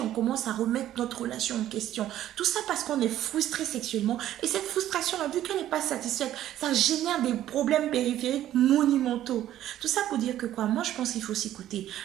on commence à remettre notre relation en question. Tout ça parce qu'on est frustré sexuellement. Et cette frustration, vu qu'elle n'est pas satisfaite, ça génère des problèmes périphériques monumentaux. Tout ça pour dire que quoi? Moi, je pense qu'il faut s'écouter.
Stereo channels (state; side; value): quieter; left; 12.6 dB